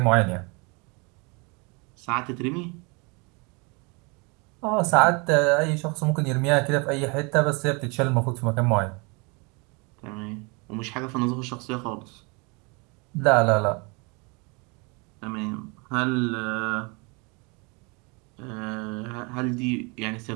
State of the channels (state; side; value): quieter; left; 30.4 dB